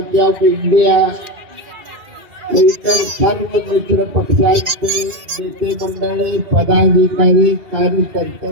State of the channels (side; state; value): left; late; 2.8 ms